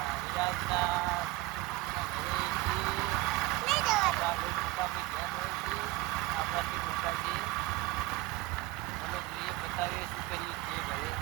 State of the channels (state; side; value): quieter; left; 19.1 dB